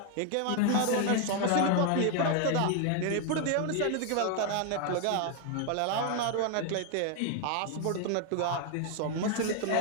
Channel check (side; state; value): both; different; correlation 0.01